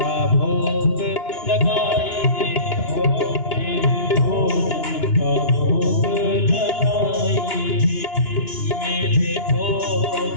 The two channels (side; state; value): right; late; 2.9 ms